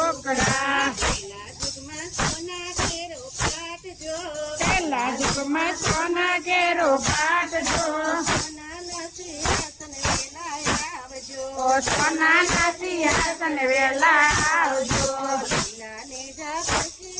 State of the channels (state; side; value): identical; both; correlation 1.00